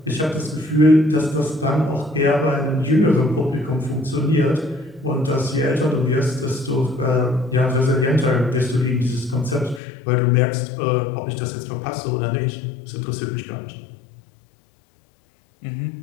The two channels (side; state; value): right; drops out; at 9.8 s